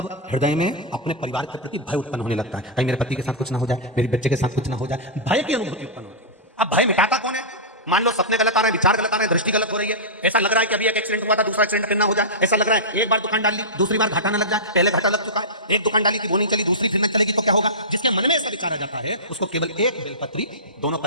हृदय में अपने परिवार के प्रति भय उत्पन्न होने लगता है, कहीं मेरे पति के साथ कुछ ना हो जाए, मेरे बच्चे के साथ कुछ ना हो जाए, भय की अनुभूति उत्पन्न होती है। अब भय मिटाता कौन है? मान लो सपने गलत आ रहे हैं, विचार गलत आ रहे हैं, दृष्टि गलत हो रही है, ऐसा लग रहा है कि अभी एक एक्सीडेंट हुआ था, दूसरा एक्सीडेंट फिर ना हो जाए, ऐसा लग रहा है एक बार दुकान डाल ली, दूसरी बार घाटा ना लग जाए, पहले घाटा लग चुका है, एक दुकान डाली थी वो नहीं चली, दूसरी फिर न चलेगी तो क्या होगा? जिसके मन में ऐसा विचार आ जाता है उसको केवल एक बेलपत्री, दोनों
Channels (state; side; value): normal; both; correlation -0.15